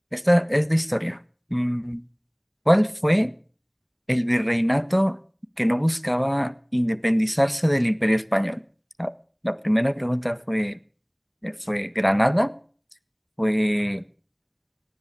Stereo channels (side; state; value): both; identical; correlation 1.00